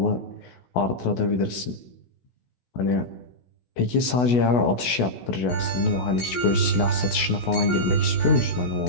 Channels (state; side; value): late; right; 16 ms